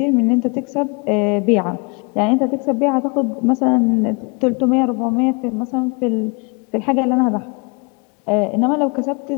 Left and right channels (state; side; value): quieter; right; 32.2 dB